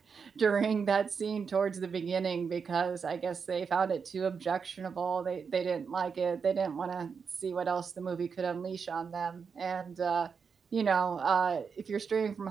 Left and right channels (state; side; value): quieter; left; 5.9 dB